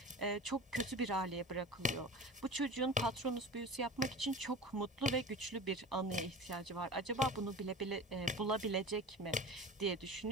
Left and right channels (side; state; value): both; normal; correlation 0.33